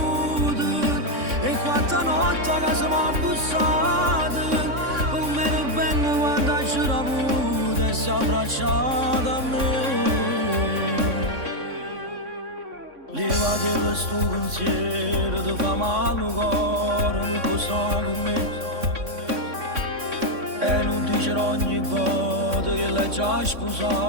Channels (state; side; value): late; left; 3.6 ms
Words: e quanta notte a casa mi ha bussato, come era bello quando c'era avuto e si è abbracciato a me. Levati questo pensiero, ti fa male il cuore, non può stare con me. E non dicerò ogni volta che l'hai già